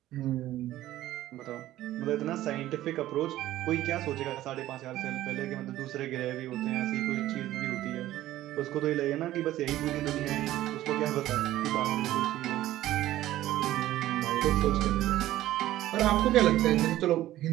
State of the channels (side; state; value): left; quieter; 14.5 dB